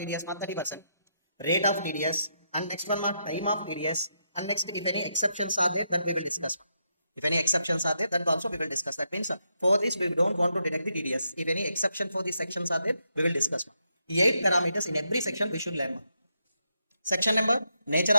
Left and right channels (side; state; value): both; inverted; correlation -0.81